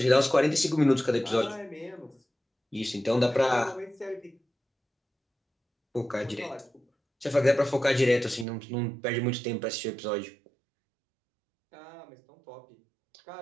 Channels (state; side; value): drops out; left; at 8.5 s